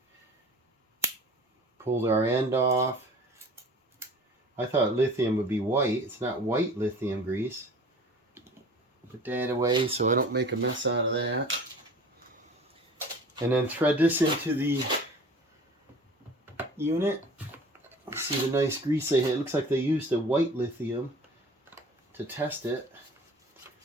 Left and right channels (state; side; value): normal; both; correlation 0.43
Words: Pulled our end off. I thought lithium would be white. It's not white lithium grease. Put that away so I don't make a mess out of that. And then thread this into the unit. See the nice grease they had. It looks like they used a white lithium to test it.